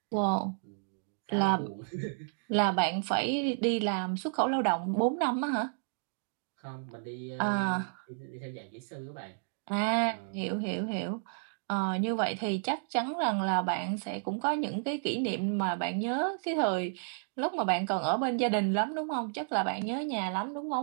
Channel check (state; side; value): silent; left; digital silence